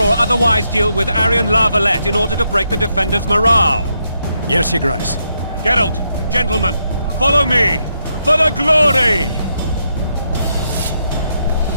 otherwise deal with Aryan Lavalette in order to break the defenders' morale. Yes, Your Grace. Geralt, gentlemen, follow me! For the glory!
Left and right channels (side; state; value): both; inverted; correlation -0.81